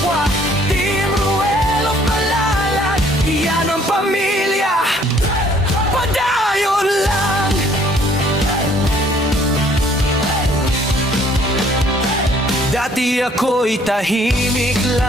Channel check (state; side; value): normal; both; correlation 0.60